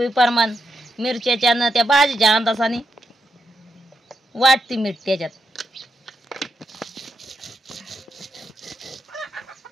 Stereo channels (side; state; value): both; normal; correlation 0.84